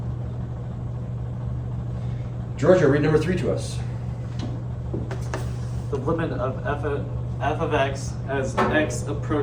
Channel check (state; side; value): identical; both; correlation 1.00